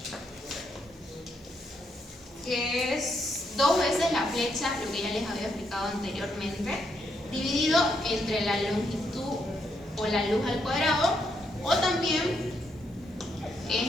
que es 2 veces la flecha, lo que ya les había explicado anteriormente, dividido entre la longitud o la luz al cuadrado, o también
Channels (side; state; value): both; normal; correlation 0.78